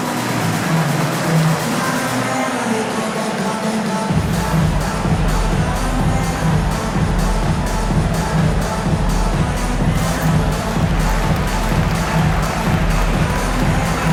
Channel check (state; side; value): identical; both; correlation 1.00